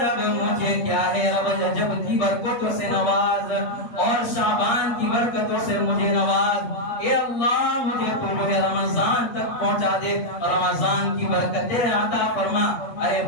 مجھے کیا ہے رب رجب کی برکتوں سے نواز اور شعبان کی برکتوں سے مجھے نواز، اے اللہ مجھے تو جو ہے رمضان تک پہنچا دے، رمضان کی برکتیں عطا فرما۔ ارے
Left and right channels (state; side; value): late; right; 8.3 ms